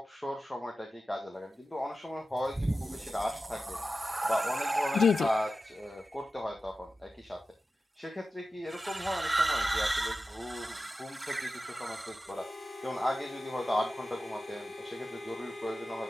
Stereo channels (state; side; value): normal; both; correlation 0.93